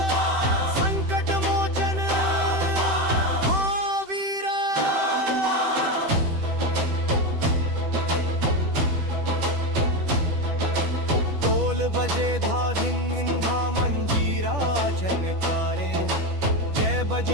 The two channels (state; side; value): late; left; 10 ms